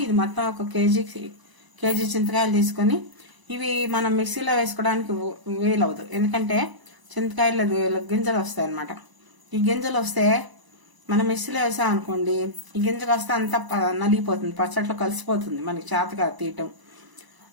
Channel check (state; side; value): late; left; 1.0 ms